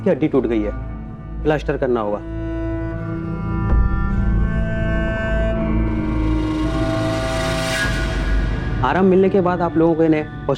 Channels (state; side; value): identical; both; correlation 1.00